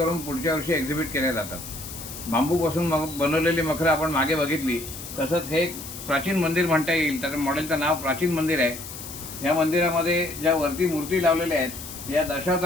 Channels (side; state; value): left; noise; hiss, 11 dB below the sound